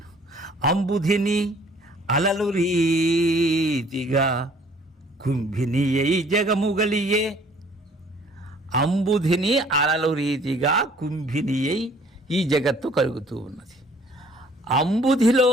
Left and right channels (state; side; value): normal; both; correlation 0.57